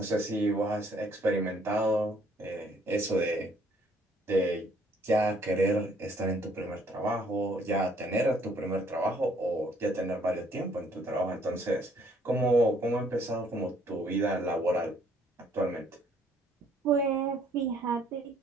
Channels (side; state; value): both; normal; correlation 0.64